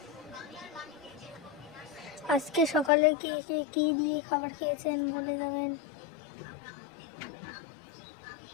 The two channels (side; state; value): right; drops out; at 2.9 s